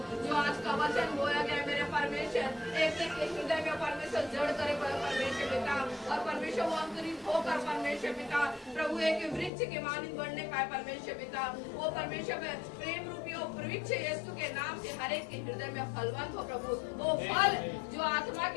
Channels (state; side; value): drops out; right; at 9.5 s